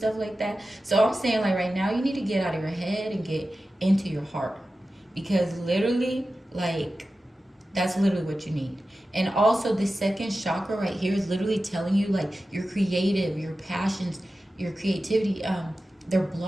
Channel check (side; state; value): both; normal; correlation 0.94